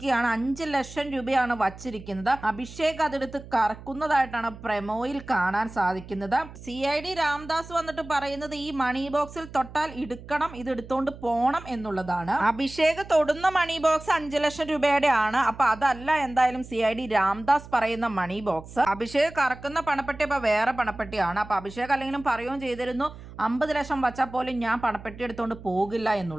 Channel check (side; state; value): right; noise; hum, 16 dB below the sound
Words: 5 ലക്ഷം രൂപയാണ് വച്ചിരിക്കുന്നത്. അഭിഷേക് അതെടുത്ത് കറക്കുന്നതായിട്ടാണ് പ്രൊമോയിൽ കാണാൻ സാധിക്കുന്നത്. CID രാംദാസ് വന്നിട്ട് പറയുന്നത് ഈ മണി ബോക്സിൽ തൊട്ടാൽ എടുക്കണം, ഇത് എടുത്തോണ്ട് പോണം എന്നുള്ളതാണ്. അഭിഷേക് തൊടുന്ന മണി ബോക്സ് 5 ലക്ഷം രൂപയുടെ ആണ്. അപ്പൊ അതല്ല എന്തായാലും CID രാംദാസ് പറയുന്ന മണി ബോക്സ്. അഭിഷേക് കറക്കുന്ന പണപ്പെട്ടി അപ്പൊ വേറെ പണപ്പെട്ടിയാണ്. അപ്പൊ അഭിഷേക് അല്ലെങ്കിലും പറയുകയും ചെയ്തിരുന്നു 50 ലക്ഷം വച്ചാൽ പോലും ഞാൻ പണപ്പെട്ടി എടുത്തോണ്ട് പോകില്ല